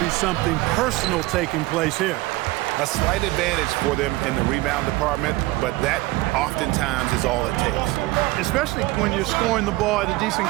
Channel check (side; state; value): left; quieter; 19.8 dB